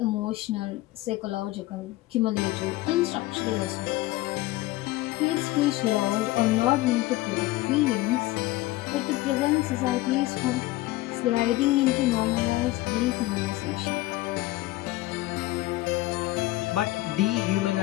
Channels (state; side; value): quieter; right; 18.0 dB